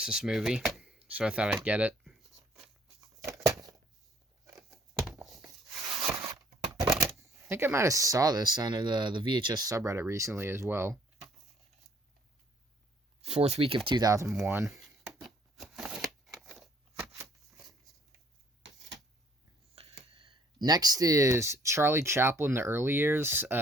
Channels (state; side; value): normal; both; correlation 0.61